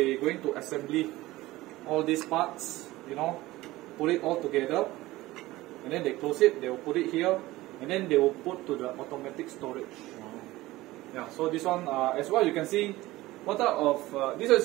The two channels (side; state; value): left; quieter; 18.1 dB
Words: going to assembly all these parts, you know, put it all together, and then they close it, they will put it here, and then they will put to the automatic storage. Yeah, so this one as well you can see what type of this